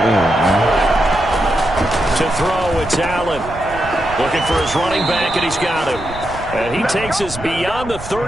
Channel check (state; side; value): noise; right; rumble, 13 dB below the sound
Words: To throw, it's Allen. Looking for his running back, and he's got him. And he takes us beyond the